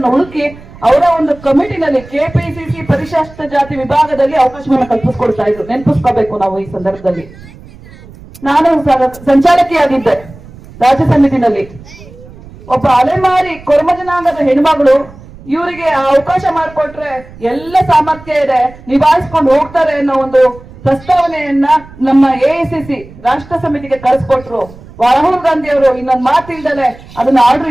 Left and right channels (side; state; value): right; noise; rumble, 20 dB below the sound